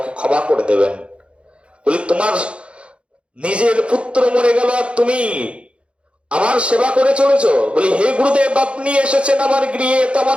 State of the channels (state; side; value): late; left; 0.059 ms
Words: ক্ষমা করে দেবেন। বলি তোমার নিজের পুত্র মরে গেল আর তুমি আমার সেবা করে চলেছ? বলি হে গুরুদেব, আপনি এসেছেন আমার গৃহে, তো আমার